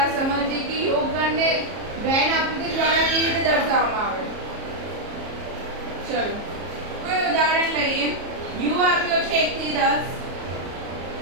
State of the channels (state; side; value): late; left; 34 ms